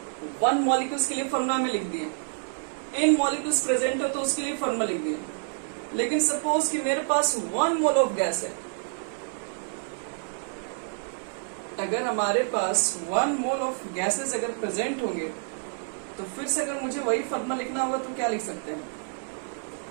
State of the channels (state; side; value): silent; left; digital silence